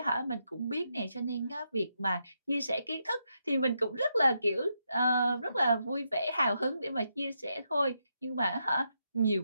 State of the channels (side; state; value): both; inverted; correlation -0.82